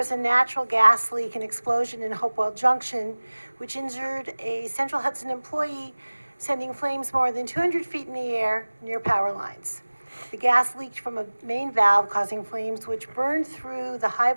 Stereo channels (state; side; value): inverted; both; correlation -1.00